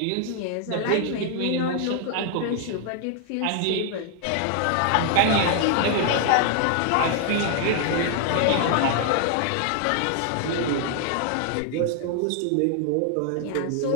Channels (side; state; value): both; different; correlation 0.00